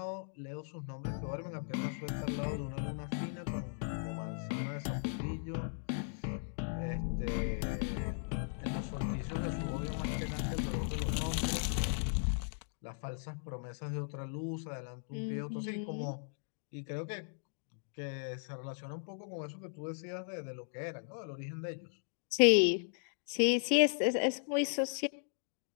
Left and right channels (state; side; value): silent; right; digital silence